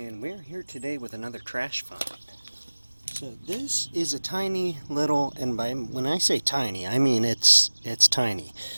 we're here today with another trash find. So this is a tiny little, and when I say tiny, I mean it's tiny,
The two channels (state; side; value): inverted; both; correlation -1.00